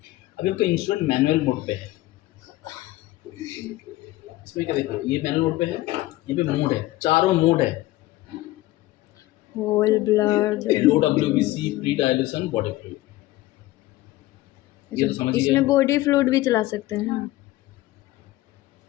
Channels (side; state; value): right; quieter; 17.5 dB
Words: अभी आपका इंस्ट्रूमेंट मैनुअल मोड पे है। इसमें क्या देखो, ये मैनुअल मोड पे है, ये पे मोड है, चारों मोड है। होल ब्लड, लो WBC, pre dilution, body fluid. ये तो समझ इसमें गए, बॉडी फ्लूइड भी चला सकते हैं ना।